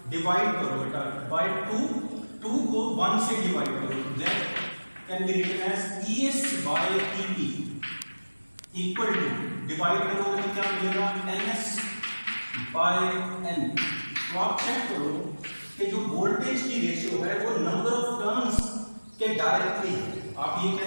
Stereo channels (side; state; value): both; inverted; correlation -1.00